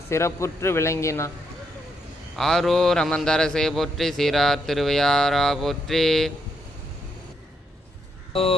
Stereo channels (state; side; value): normal; both; correlation 0.78